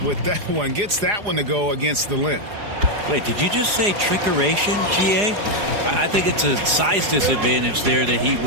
with that one. Gets that one to go against the limb. Wait, did you just say trickeration, GA? I think it's a size disadvantage there that he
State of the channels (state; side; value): late; left; 4.8 ms